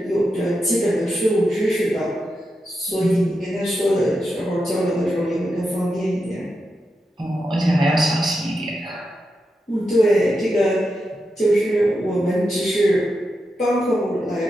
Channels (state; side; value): normal; both; correlation 0.87